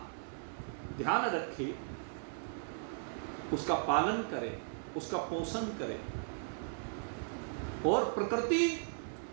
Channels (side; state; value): left; silent; 53 dB below the other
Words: ध्यान रखे, उसका पालन करे, उसका पोषण करे, और प्रकृति